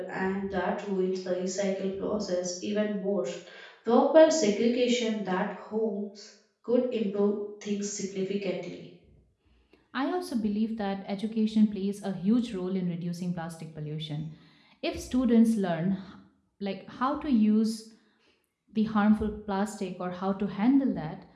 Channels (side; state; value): both; identical; correlation 1.00